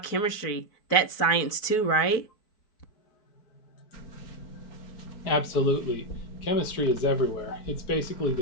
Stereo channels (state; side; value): late; right; 4.6 ms